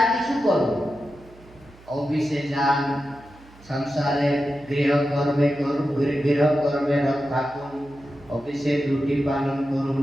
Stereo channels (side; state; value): right; noise; hum, 24 dB below the sound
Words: किछु करो, ऑफिसे जान, संसारे गृह कर्मे रत थाकुन, অফিসে ডিউটি পালন করুন,